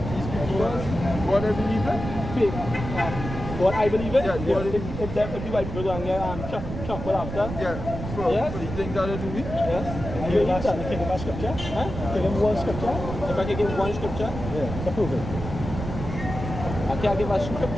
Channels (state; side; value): noise; right; rumble, 7 dB below the sound